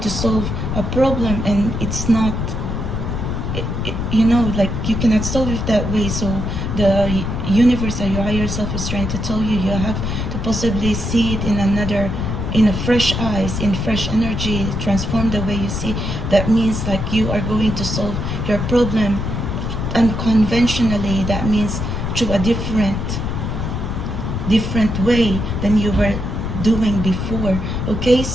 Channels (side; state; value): left; noise; rumble, 3 dB below the sound